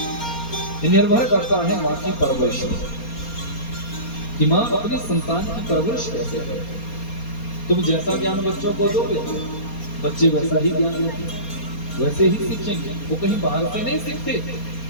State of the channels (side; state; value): right; late; 4.3 ms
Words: ये निर्भर करता है माँ की परवरिश कि माँ अपनी संतान की परवरिश कैसे करे। तुम जैसा ज्ञान बच्चों को दोगे बच्चे वैसा ही ज्ञान लेंगे, वैसे ही सीखेंगे। वो कहीं बाहर से नहीं सीखते,